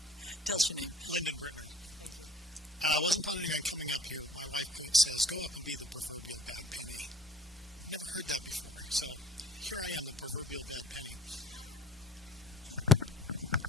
Tell us your name. Lyndon Brittner. Thank you. I wasn't planning on coming up here, but my wife says, go up and be the proverbial bad penny. I've never heard that before. So here I am, the proverbial bad penny.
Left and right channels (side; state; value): both; normal; correlation 0.52